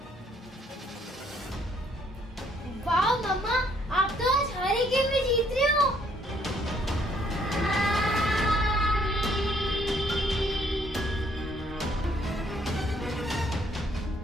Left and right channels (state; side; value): normal; both; correlation 0.66